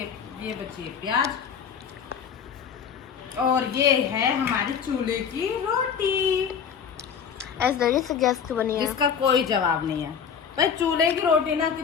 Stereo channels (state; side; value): quieter; right; 7.2 dB